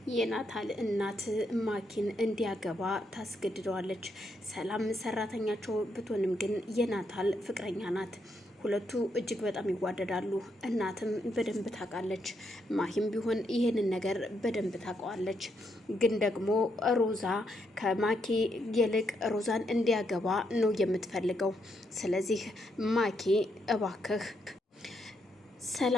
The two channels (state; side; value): normal; both; correlation 0.78